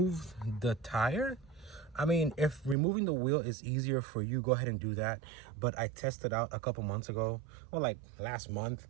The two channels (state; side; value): drops out; left; at 2.8 s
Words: the tire. I mean, if removing the wheel is easier for you, go ahead and do that. But I tested out a couple months ago, or like last month,